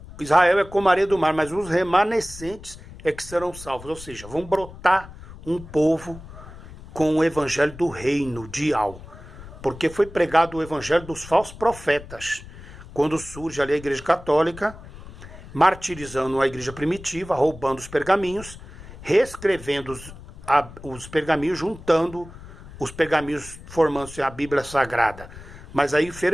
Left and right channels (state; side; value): noise; left; rumble, 16 dB below the sound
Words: Israel é como a areia do mar, mas os remanescentes é que serão salvos. Ou seja, vão brotar um povo com o evangelho do reino de Yahweh. Porque foi pregado o evangelho dos falsos profetas. Quando surge ali a igreja católica, martirizando a igreja primitiva, roubando os pergaminhos, reescrevendo os pergaminhos, juntando os pergaminhos, formando-se a Bíblia Sagrada. Mas aí